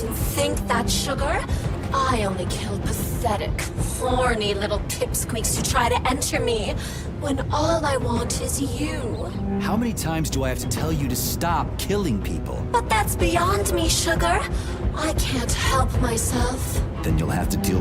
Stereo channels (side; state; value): both; identical; correlation 1.00